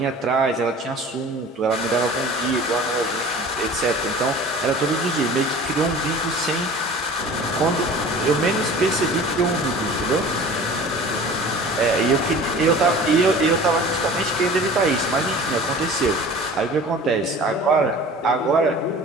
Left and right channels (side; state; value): both; normal; correlation 0.42